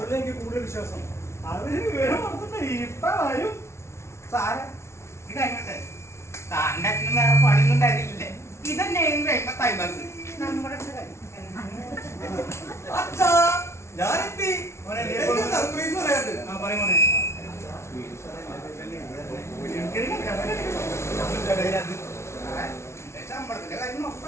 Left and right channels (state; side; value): late; right; 0.13 ms